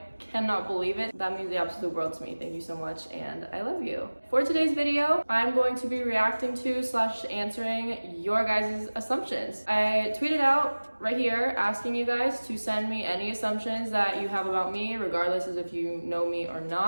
cannot believe it. That means the absolute world to me. Thank you so much and I love you. For today's video, I'm going to be reacting to / answering your guys' assumptions. I tweeted out right here asking you guys to send me any assumptions that you have about me, regardless of if you know me or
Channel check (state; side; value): inverted; both; correlation -1.00